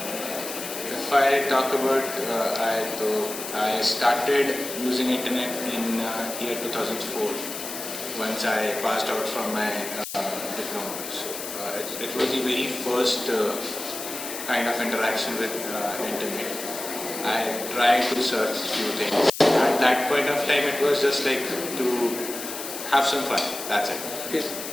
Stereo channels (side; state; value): left; noise; hiss, 8 dB below the sound